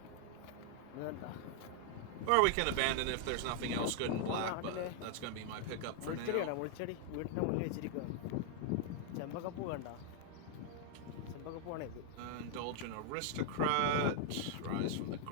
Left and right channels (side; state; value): both; different; correlation 0.00